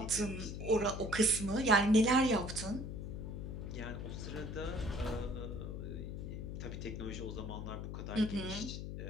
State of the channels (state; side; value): noise; left; hum, 6 dB below the sound